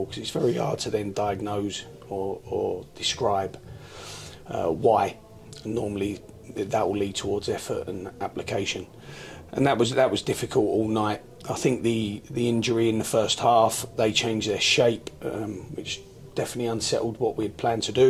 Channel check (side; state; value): both; identical; correlation 1.00